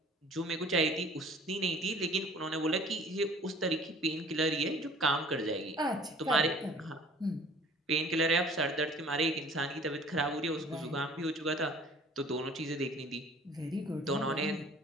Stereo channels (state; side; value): normal; both; correlation 0.49